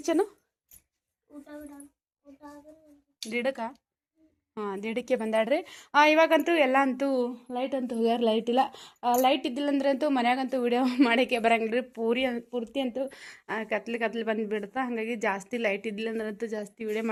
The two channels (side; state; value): both; identical; correlation 1.00